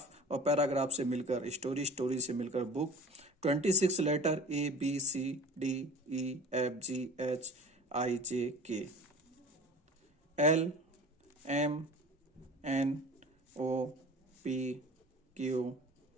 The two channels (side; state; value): both; normal; correlation 0.41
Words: और पैराग्राफ से मिलकर स्टोरी, स्टोरी से मिलकर book. 26 letter A, B, C, D, E, F, G, H, I, J, K, L, M, N, O, P, Q,